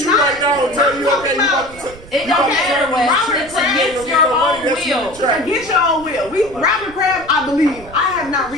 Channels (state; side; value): noise; right; rumble, 19 dB below the sound